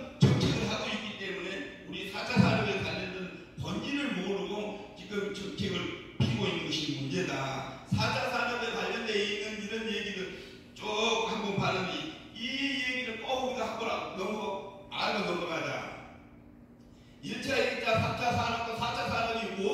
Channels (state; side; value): identical; both; correlation 1.00